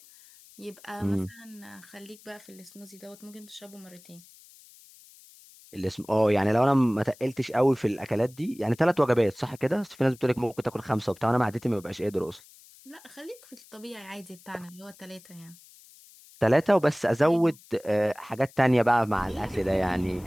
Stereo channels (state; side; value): noise; left; hiss, 24 dB below the sound